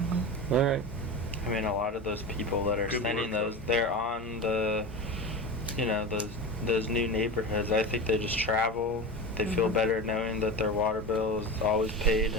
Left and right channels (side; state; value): both; normal; correlation 0.26